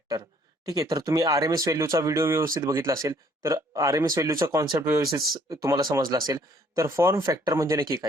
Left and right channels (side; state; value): both; normal; correlation 0.62